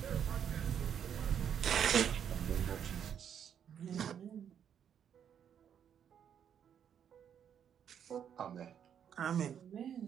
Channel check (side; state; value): left; quieter; 8.6 dB